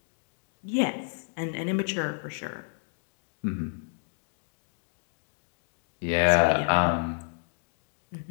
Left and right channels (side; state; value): right; silent; digital silence